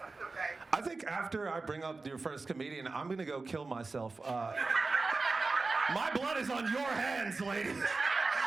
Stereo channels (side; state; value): left; quieter; 3.8 dB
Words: Okay. I think after I bring up your first comedian, I'm going to go kill myself. My blood is on your hands, lady.